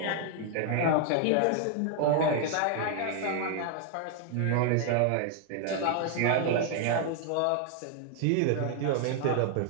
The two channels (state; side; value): different; both; correlation 0.00